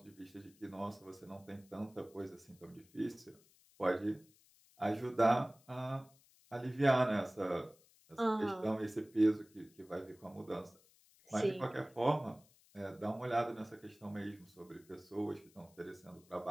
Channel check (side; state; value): left; noise; hiss, 29 dB below the sound